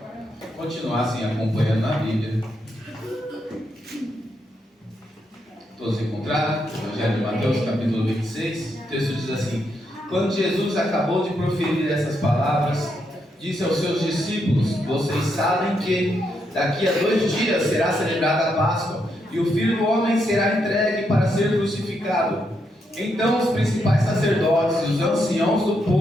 continuassem acompanhando na Bíblia. Todos encontraram? Evangelho de Mateus, capítulo 26. O texto diz assim: Quando Jesus acabou de proferir essas palavras, disse aos seus discípulos: Vocês sabem que daqui a 2 dias será celebrada a Páscoa, e o Filho do Homem será entregue para ser crucificado. Então os principais sacerdotes e os anciãos do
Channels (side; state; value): both; normal; correlation 0.80